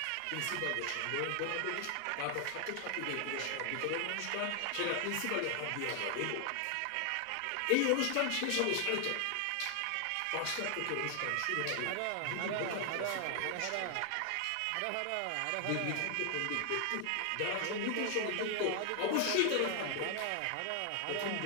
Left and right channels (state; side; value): different; both; correlation 0.00